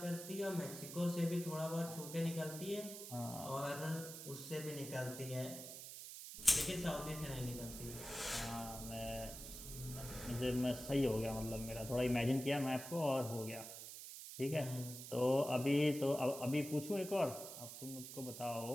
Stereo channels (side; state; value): right; noise; hiss, 10 dB below the sound